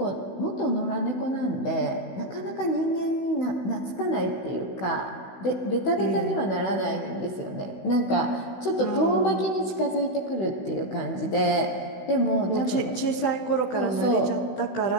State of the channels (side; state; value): right; late; 16 ms